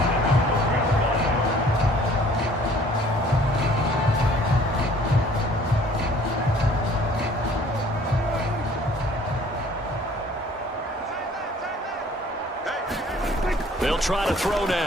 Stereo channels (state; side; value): normal; both; correlation 0.54